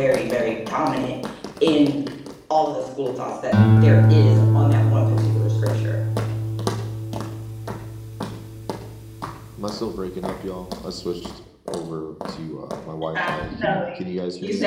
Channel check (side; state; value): both; identical; correlation 1.00